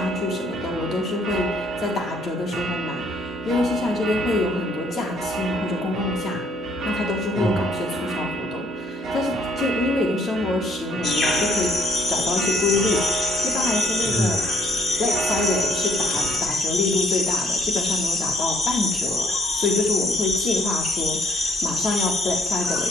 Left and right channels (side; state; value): both; normal; correlation 0.66